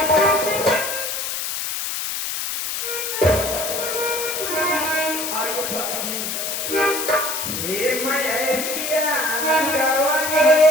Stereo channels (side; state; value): left; noise; hiss, 3 dB below the sound